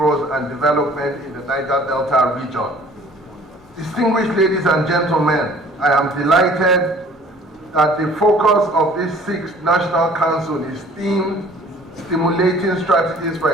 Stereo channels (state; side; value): normal; both; correlation 0.52